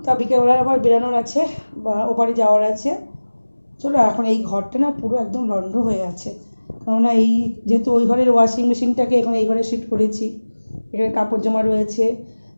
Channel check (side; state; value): both; inverted; correlation -1.00